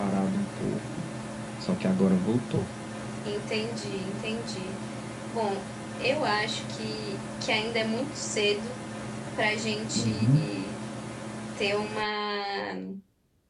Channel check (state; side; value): identical; both; correlation 1.00